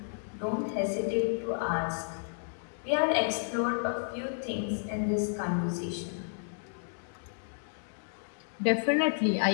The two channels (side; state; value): right; silent; 57 dB below the other